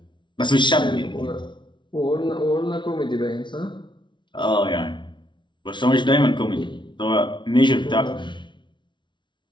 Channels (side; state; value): right; late; 0.23 ms